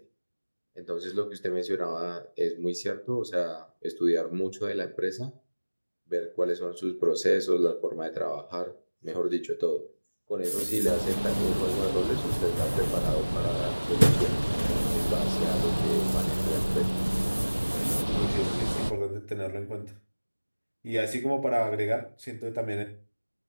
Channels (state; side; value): inverted; both; correlation -1.00